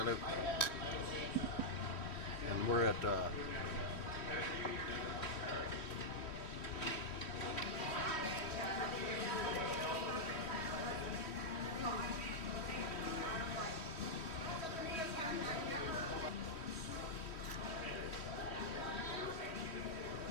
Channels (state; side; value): late; right; 3.1 ms